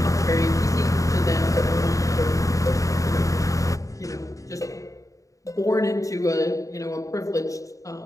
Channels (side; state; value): right; late; 0.16 ms